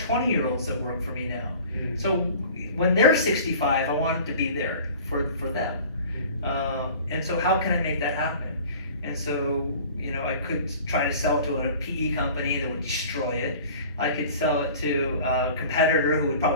20-year-olds that work for me now. So when they're 65, I want it to be there for them. And so how can I make that happen? And so I could try to sell it to a PE company that would destroy it. I could sell it to a competitor who would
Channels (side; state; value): both; inverted; correlation -0.44